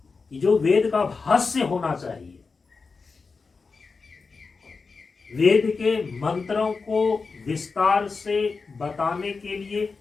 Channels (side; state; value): right; quieter; 4.6 dB